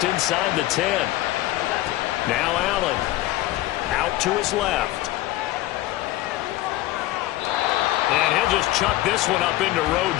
inside the 10. Now Allen out to his left. And he'll just chuck this one up into row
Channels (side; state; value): right; quieter; 16.4 dB